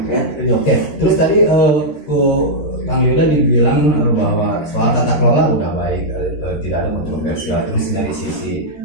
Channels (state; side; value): late; right; 13 ms